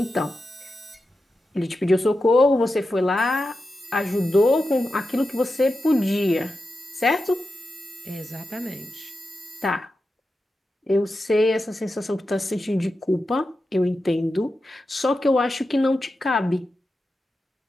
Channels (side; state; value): both; normal; correlation 0.91